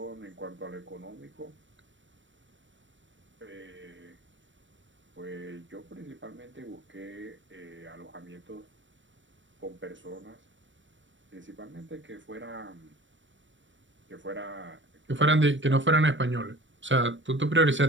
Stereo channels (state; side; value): late; left; 0.55 ms